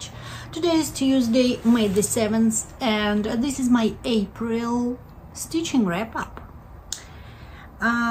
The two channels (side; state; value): both; identical; correlation 1.00